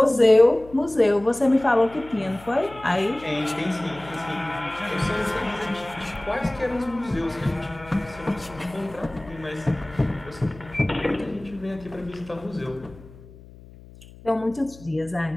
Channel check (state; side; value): noise; left; hum, 20 dB below the sound